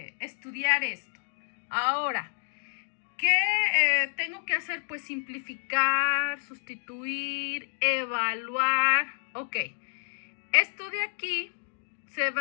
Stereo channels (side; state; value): right; silent; 58 dB below the other